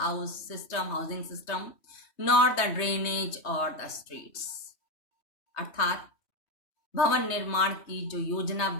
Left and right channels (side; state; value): right; late; 3.2 ms